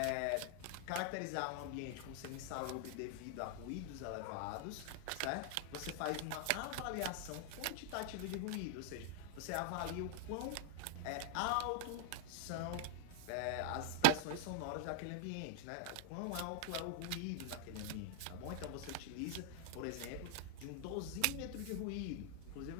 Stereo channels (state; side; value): different; both; correlation 0.00